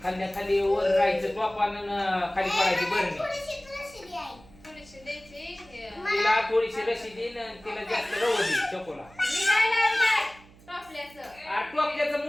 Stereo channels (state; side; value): noise; right; hum, 24 dB below the sound